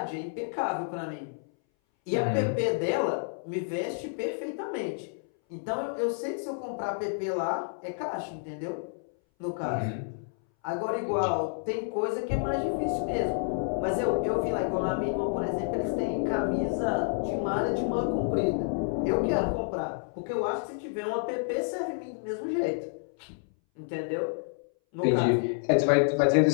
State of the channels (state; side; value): silent; right; 58 dB below the other